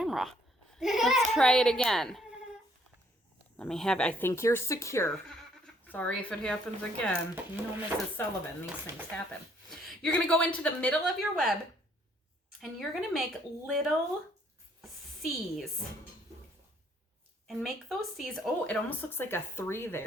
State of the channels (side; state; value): both; normal; correlation 0.65